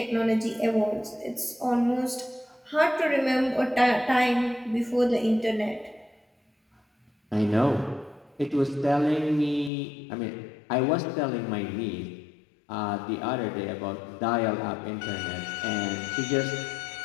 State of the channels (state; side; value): drops out; right; at 9.7 s